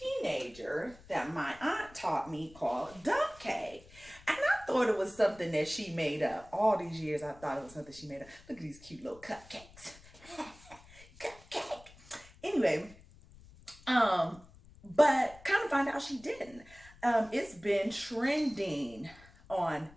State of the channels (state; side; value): noise; left; rumble, 22 dB below the sound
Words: that my aunt taught me called dump cake. And I thought it was something that she made up. All these years I thought it was something she made up. Look at these cute little cupcakes. Cupcake. Anyway, but kind of find out she didn't. It's been trending